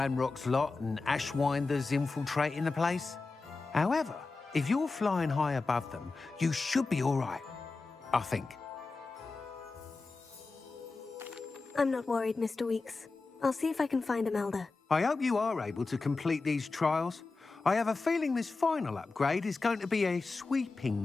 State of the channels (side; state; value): right; quieter; 3.8 dB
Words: lot and Ashwinders infiltrating the place. However, if you're flying high above them, you should be all right, I think. I'm not worried, Mr. Weeks. I'll see if I can find Imelda. I hope you are able to complete these trials. I have a feeling this final upgrade is going to be a